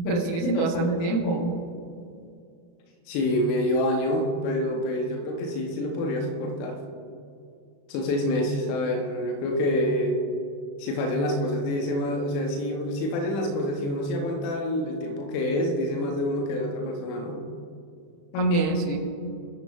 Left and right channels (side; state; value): right; late; 35 ms